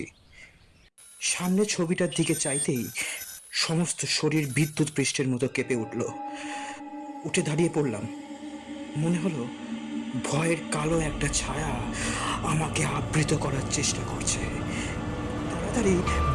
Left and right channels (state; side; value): identical; both; correlation 1.00